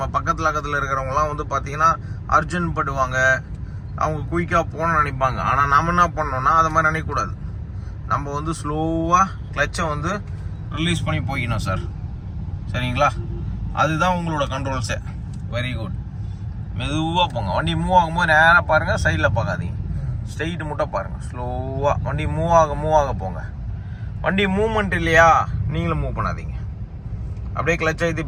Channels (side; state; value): both; identical; correlation 1.00